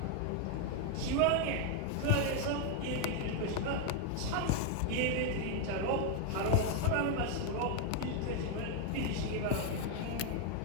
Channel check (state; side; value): different; both; correlation 0.01